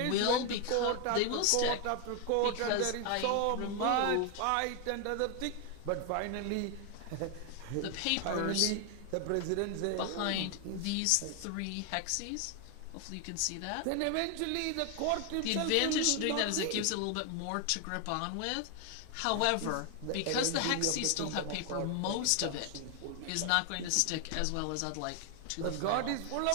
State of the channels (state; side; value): different; both; correlation 0.00